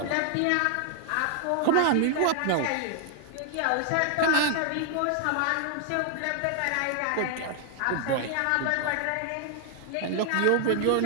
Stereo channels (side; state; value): both; different; correlation 0.00